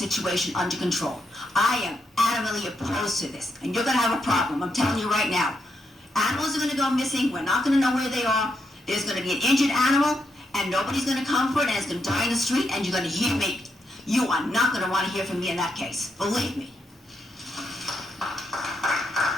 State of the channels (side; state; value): both; normal; correlation 0.81